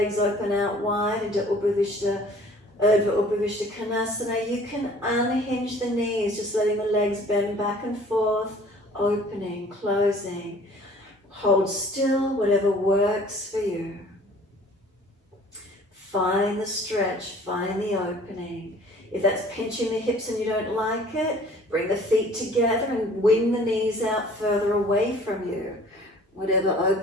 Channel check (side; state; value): both; normal; correlation 0.51